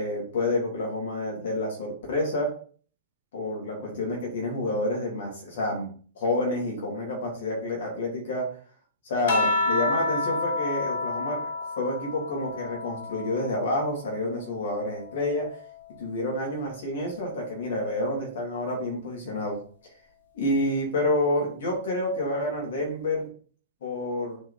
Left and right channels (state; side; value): inverted; both; correlation -0.37